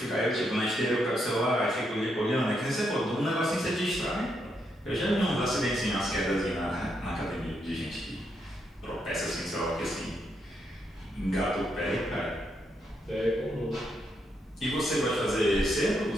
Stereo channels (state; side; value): normal; both; correlation 0.79